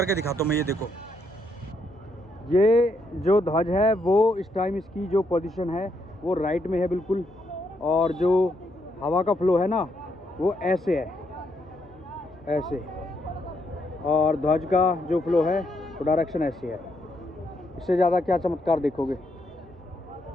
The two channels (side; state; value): both; normal; correlation 0.76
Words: दिखाता हूँ मैं। ये देखो, ये जो ध्वज है वो इस टाइम इसकी जो पोजीशन है वो राइट में है बिल्कुल, और जो हवा का फ्लो है ना वो ऐसे है, ऐसे। और ध्वज का जो फ्लो है वो डायरेक्शन ऐसे है। इससे ज़्यादा क्या चमत्कार देखोगे।